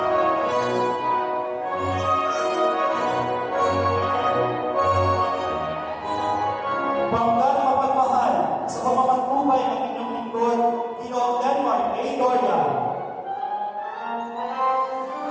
Banggaan mapagmahal sa pamamantubay ng inyong lingkod, Ginoong Denmark A. Doria.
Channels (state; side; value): identical; both; correlation 1.00